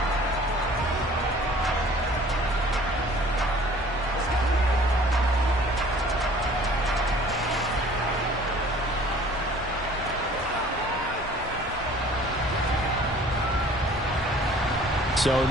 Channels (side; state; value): both; normal; correlation 0.51